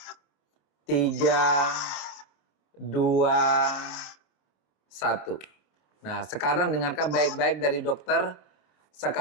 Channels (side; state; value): right; late; 26 ms